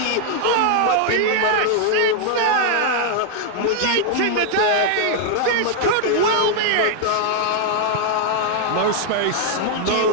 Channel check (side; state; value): both; different; correlation 0.00